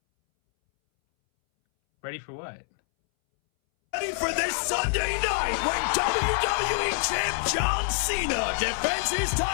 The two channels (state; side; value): silent; right; 61 dB below the other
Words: Ready for what? Ready for this Sunday night when WWE Champ John Cena defends his